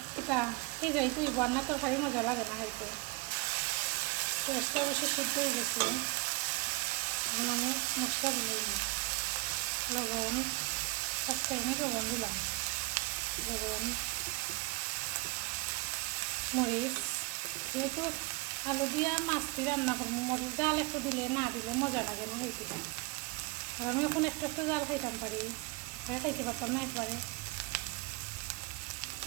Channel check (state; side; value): quieter; left; 26.3 dB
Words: এটা যাই তুই বন্যা তরকারি মজা লাগে না খাইতে। পেঁয়াজটা বেশি সিদ্ধ হয়ে গেছে। এখন আমি মশলা দিলাম, লবণ, ফার্স্ট টাইমে লবণ দিলাম, লবণ, মরিচ। যেহেতু আলু দিয়া মাছটি রান্না করবো, মরিচ জাল একটু দিলে না দিলে মজা লাগে না খাইতে। আর আমি এখন একটু একটু জাল খাইতাম পারি, খাইতে পারতাম না একবারে।